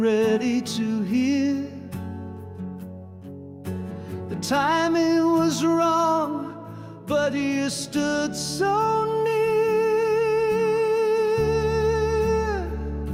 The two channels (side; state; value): both; identical; correlation 1.00